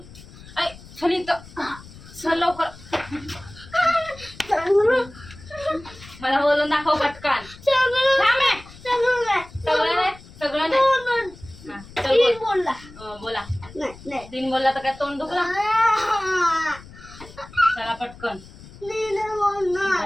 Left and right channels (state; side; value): noise; left; rumble, 19 dB below the sound